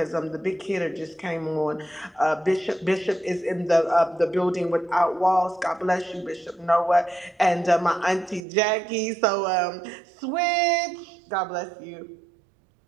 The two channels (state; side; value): drops out; left; at 8.4 s